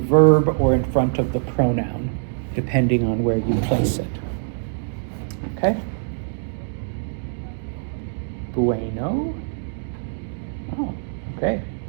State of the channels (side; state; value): left; silent; digital silence